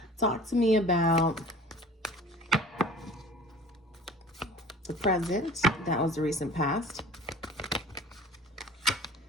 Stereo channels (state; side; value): normal; both; correlation 0.43